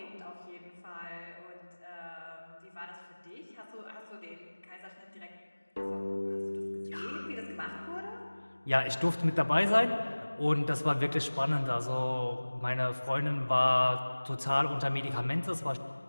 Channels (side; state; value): both; inverted; correlation -1.00